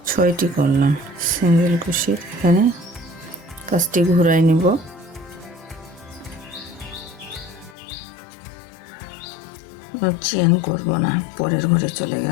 6টি করলাম সিঙ্গেল ক্রোশেট। এখানে কাজটি ঘুরাই নিব। চেন করব না, পরের ঘরে চলে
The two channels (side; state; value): right; drops out; at 7.8 s